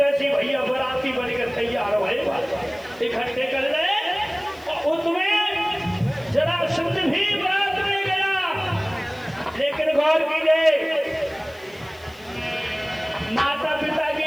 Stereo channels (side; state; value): left; noise; hiss, 27 dB below the sound